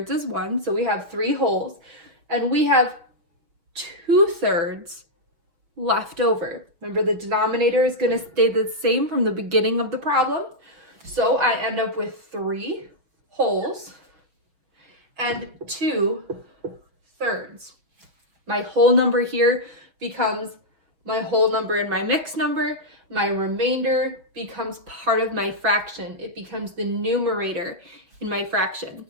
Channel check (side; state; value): left; late; 6.2 ms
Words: is 1. So we have 3 wholes, and we have 2 thirds left over. Remember, the denominator is going to stay the same from the beginning of the problem. So I end up with 3 wholes and 2 thirds. My whole number here becomes my whole number in my mixed number. My remainder becomes part of my fraction. It becomes the numerator in my fraction.